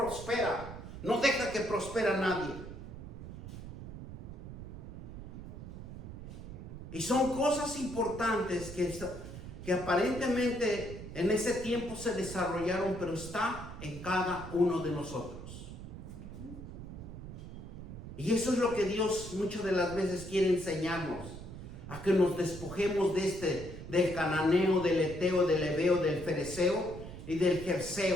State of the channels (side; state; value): right; noise; rumble, 11 dB below the sound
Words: no deja que prospera nadie. Y son cosas importantes que aparentemente en ese tiempo se desarrollaron, pero está en cada uno de nosotros. Y eso es lo que Dios muchas de las veces quiere enseñarnos, a que nos despojemos del cananeo, del eteo, del ebeo, del fereceo y del